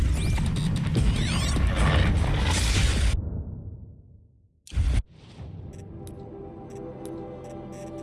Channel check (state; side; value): identical; both; correlation 1.00